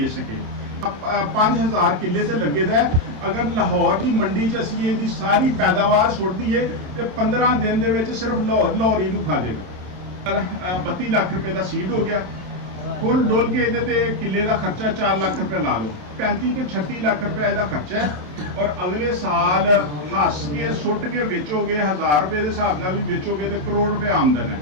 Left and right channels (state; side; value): late; left; 27 ms